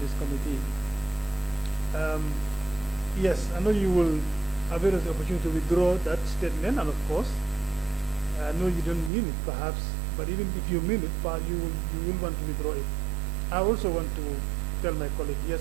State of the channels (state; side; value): drops out; left; at 9.1 s